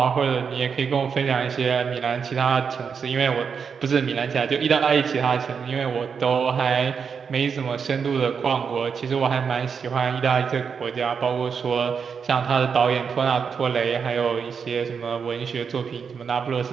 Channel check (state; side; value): quieter; left; 6.3 dB